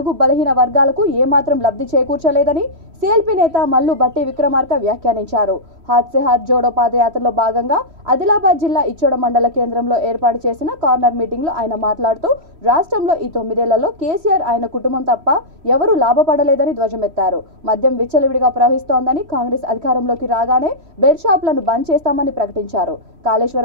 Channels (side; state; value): left; late; 3.1 ms